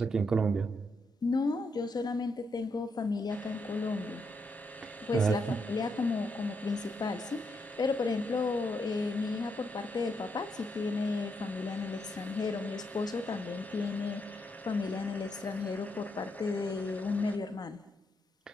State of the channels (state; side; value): normal; both; correlation 0.79